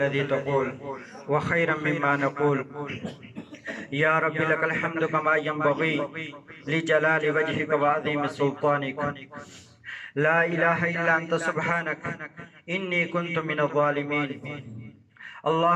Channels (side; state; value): both; identical; correlation 1.00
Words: تقول وخيرا مما نقول. یا رب لك الحمد كما ينبغي لجلال وجهك وعظيم سلطانك. لا إله إلا أنت سبحانك إني كنت من الظالمين.